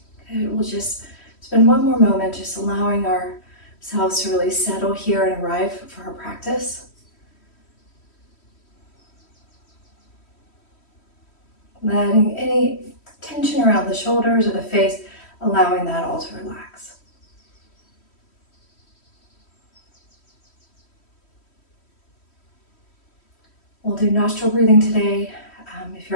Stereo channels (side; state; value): right; late; 3.1 ms